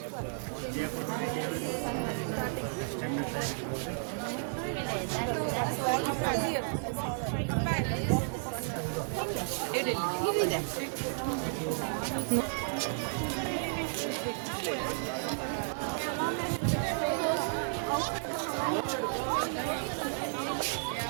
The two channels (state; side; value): silent; left; digital silence